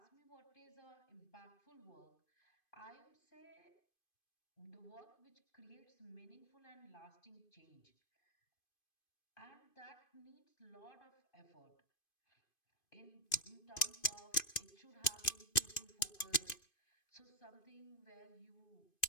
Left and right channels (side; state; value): right; late; 2.5 ms